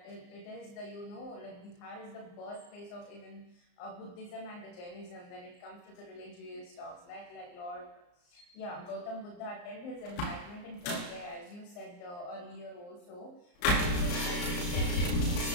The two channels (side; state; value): right; late; 34 ms